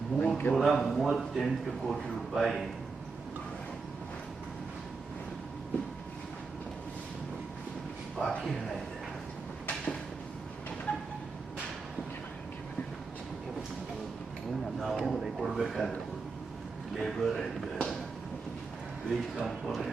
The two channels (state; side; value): quieter; left; 4.4 dB